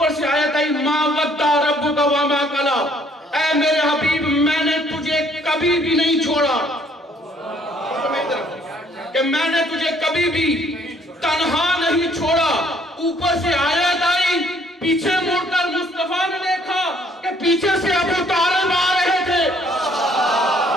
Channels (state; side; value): normal; both; correlation 0.63